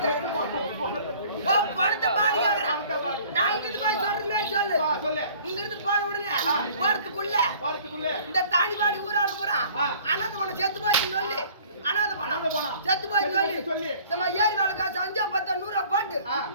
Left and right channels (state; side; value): inverted; both; correlation -0.52